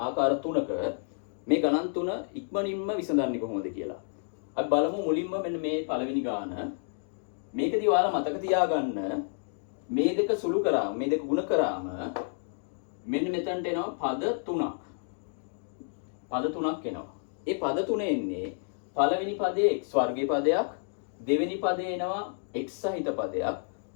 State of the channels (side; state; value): right; silent; digital silence